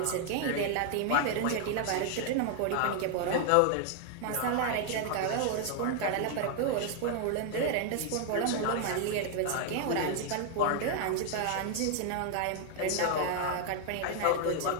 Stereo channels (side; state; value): both; different; correlation 0.00